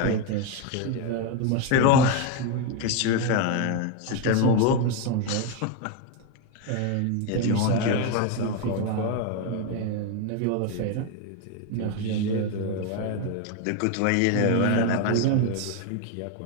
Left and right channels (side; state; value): both; different; correlation 0.02